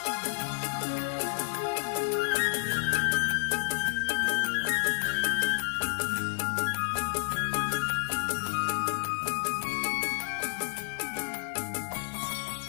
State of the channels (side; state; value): right; silent; 58 dB below the other